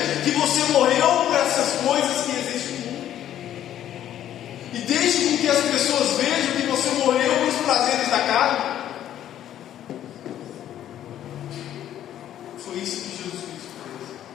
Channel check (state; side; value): quieter; right; 11.4 dB